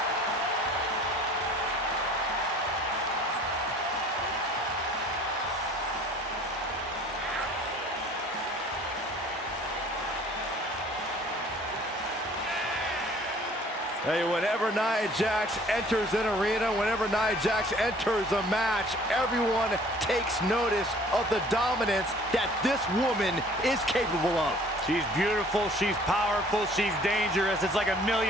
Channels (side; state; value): both; normal; correlation 0.53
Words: Hey, whenever Nia Jax enters an arena, whenever Nia Jax enters a match, everyone takes notice of the dominance that this woman is capable of. She's beautiful, she's powerful, she's dangerous. It's like $1